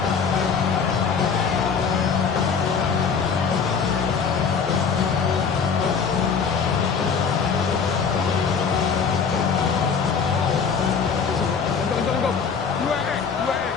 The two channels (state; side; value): quieter; right; 6.0 dB